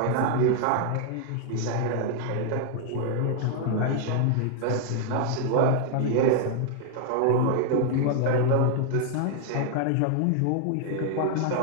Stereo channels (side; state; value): both; different; correlation 0.00